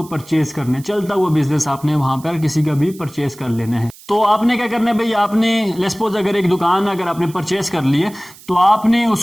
परचेज करना है। चलता हुआ बिजनेस आपने वहां पर किसी का भी परचेज कर लेना है। तो आपने क्या करना है भाई, आपने लेट्स सपोज अगर एक दुकान अगर आपने परचेज कर ली है तो आपने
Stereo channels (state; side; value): noise; right; hiss, 21 dB below the sound